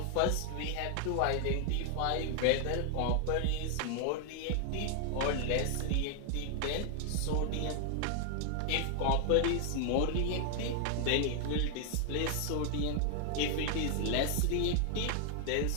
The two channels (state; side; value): different; both; correlation 0.00